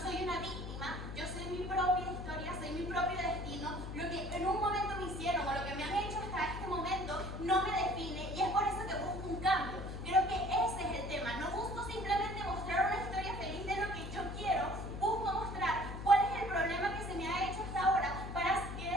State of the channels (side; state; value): left; noise; hum, 8 dB below the sound